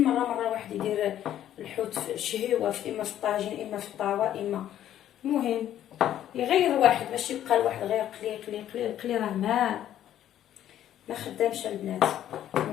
مره واحد يدير الحوت في شهيوه، في اما في الطاجين اما في الطاوه، اما المهم يغير واحد باش يبقى الواحد غير قلي قلي قلي قلي، راه ما خدامش البنات.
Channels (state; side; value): quieter; right; 11.5 dB